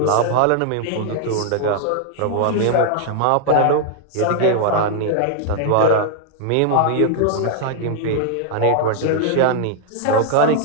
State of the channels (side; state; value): both; different; correlation -0.01